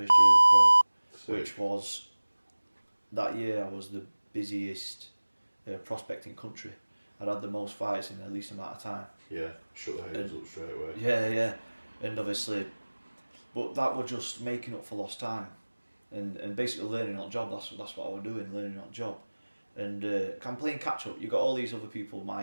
year as a pro, Sick. which was, that year I was the busiest prospect in country. I'd had the most fights in the least amount of time. Yeah, shut the haters up straight away. Yeah, and obviously, but that was just making up for lost time, and basically learning on the job. That's what I was doing, learning on the job, and I'm playing catch up. You got all these other people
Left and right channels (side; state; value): both; inverted; correlation -1.00